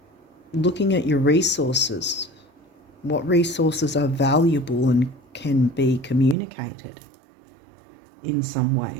looking at your resources. What resources are valuable and can be communicated in some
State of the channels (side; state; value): left; drops out; at 6.4 s